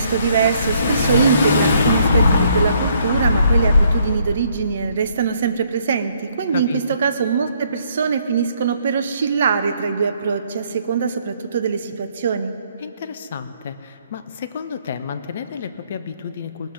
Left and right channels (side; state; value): both; inverted; correlation -0.68